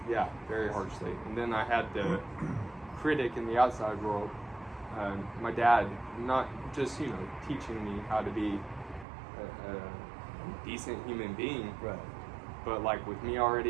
Yeah, very harshly. And then I had the critic in the outside world, my dad, not just teaching me how to be a decent human being, right? But like with me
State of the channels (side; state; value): left; drops out; at 9.1 s